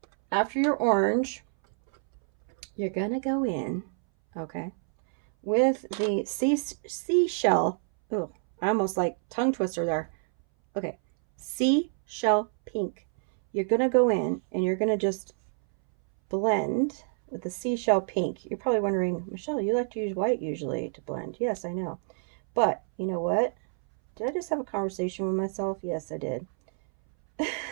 after your orange, you're going to go in, okay, with the seashell. Oh, I almost like tongue twister there. Okay. Seashell pink. You're going to go in and you're going to just blend with the seashell pink. You're probably wondering, Michelle, you like to use white usually to blend. Yes, I know. But you know what? Did I just have a conversation with myself? Yes, I did.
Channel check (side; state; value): left; silent; 60 dB below the other